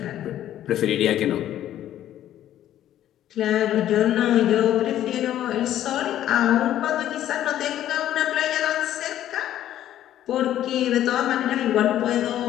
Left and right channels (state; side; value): quieter; right; 12.0 dB